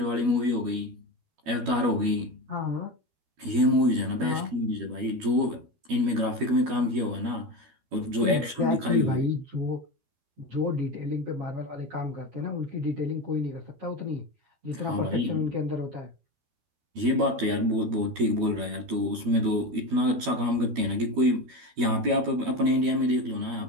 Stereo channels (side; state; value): left; late; 12 ms